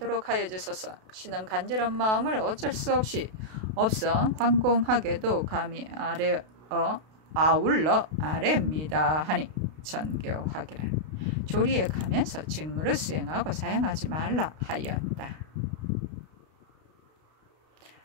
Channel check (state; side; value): late; left; 32 ms